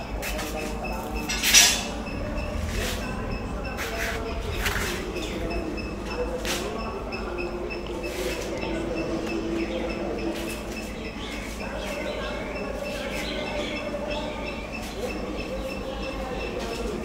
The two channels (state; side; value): identical; both; correlation 1.00